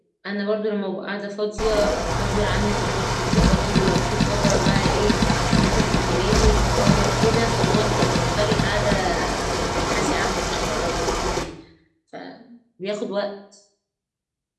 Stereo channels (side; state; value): both; identical; correlation 1.00